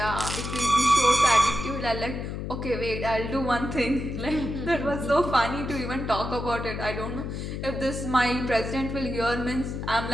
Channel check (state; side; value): noise; left; hum, 5 dB below the sound